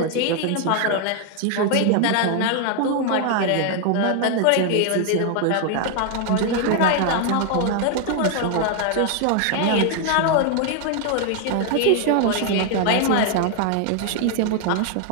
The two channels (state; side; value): different; both; correlation 0.00